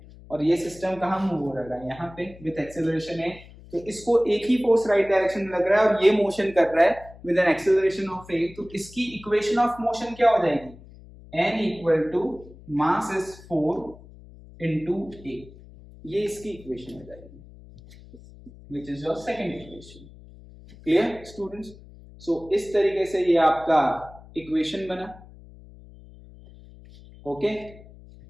और ये सिस्टम कहां मूव हो रहा है? यहाँ पे विद एक्सेलरेशन है. तो इसको एक ही फोर्स राइट डायरेक्शन में लग रहा है और ये मोशन कर रहा है with an acceleration of a. तो इसकी इक्वेशन ऑफ मोशन क्या हो जाएगी? n equal to mass is 4 into a. ये इसकी इक्वेशन हो जाएगी, which is your second equation. Clear students? So इस तरीके से ये आपका इक्वेशन बना. Okay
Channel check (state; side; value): noise; left; hum, 20 dB below the sound